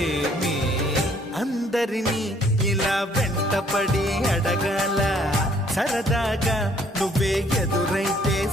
అందరినీ ఇలా వెంటపడి అడగాల సరదాగా నువ్వే ఎదురైతే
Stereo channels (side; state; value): both; normal; correlation 0.62